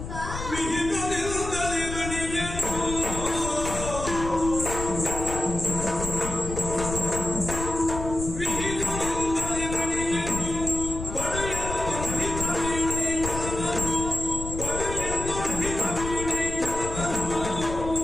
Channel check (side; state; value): left; noise; rumble, 7 dB below the sound